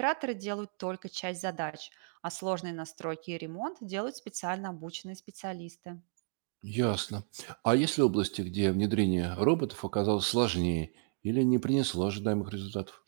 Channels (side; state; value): left; silent; 56 dB below the other